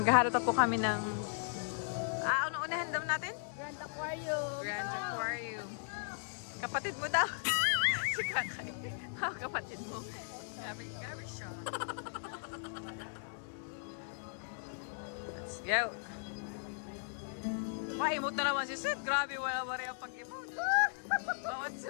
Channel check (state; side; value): silent; right; digital silence